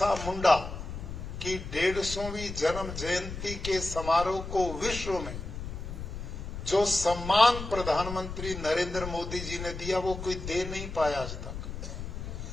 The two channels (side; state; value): left; noise; rumble, 8 dB below the sound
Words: मुंडा की 150वीं जन्म जयंती के समारोह को विश्व में जो सम्मान प्रधानमंत्री नरेंद्र मोदी जी ने दिया, वो कोई दे नहीं पाया आज तक।